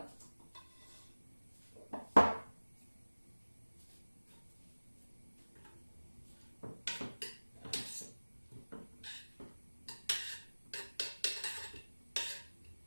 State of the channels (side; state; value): both; inverted; correlation -1.00